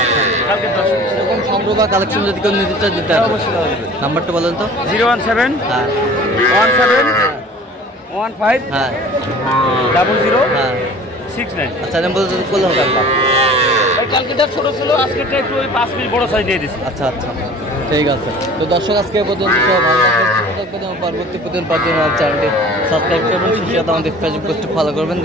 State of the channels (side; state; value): both; normal; correlation 0.45